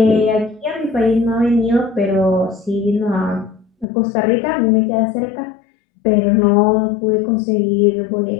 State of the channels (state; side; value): drops out; right; at 3.9 s